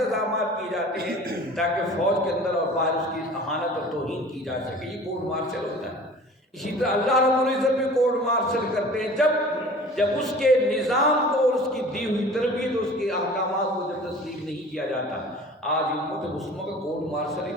کیے جاتے ہیں تاکہ فوج کے اندر اور باہر اس کی اہانت اور توہین کی جا سکے. یہ کورٹ مارشل ہوتا ہے. اسی طرح اللہ رب العزت بھی کورٹ مارشل کرتے ہیں جب اس کے نظام کو اور اس کی دی ہوئی تربیت اور اس کے احکامات کو جب تسلیم نہیں کیا جاتا. آج امت مسلمہ کا کورٹ مارشل ہی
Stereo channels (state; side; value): normal; both; correlation 0.43